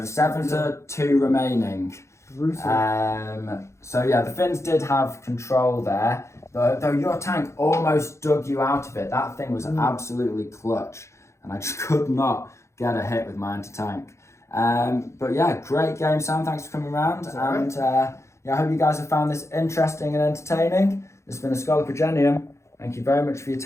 7 to 2 remaining. Brutal. So yeah, the Finns did have control there. Though your tank almost dug you out of it. That thing was absolutely clutch. And I just could not get a hit with my anti-tank. But yeah, great game, Sam. Thanks for coming around. And yeah, I hope you guys have found this interesting and entertaining. This has been a Scholar Progenium. Thank you very much for your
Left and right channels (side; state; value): right; late; 0.14 ms